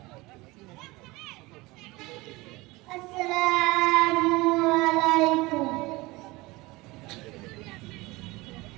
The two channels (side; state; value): left; quieter; 21.8 dB